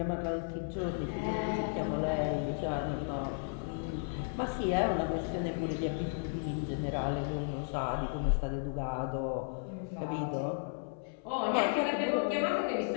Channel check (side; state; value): right; silent; 55 dB below the other